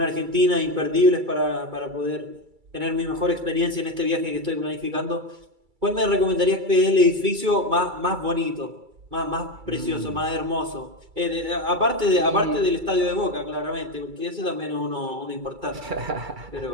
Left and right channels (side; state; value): left; late; 2.3 ms